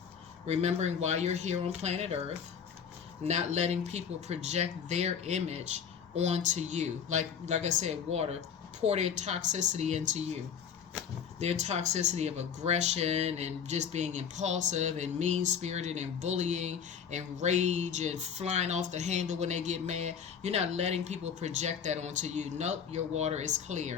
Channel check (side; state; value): right; quieter; 7.4 dB